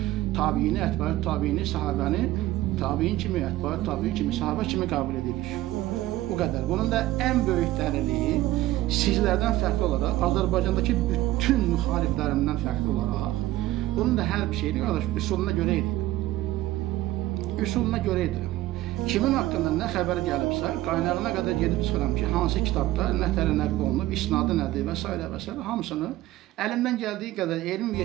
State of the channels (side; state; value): left; quieter; 16.0 dB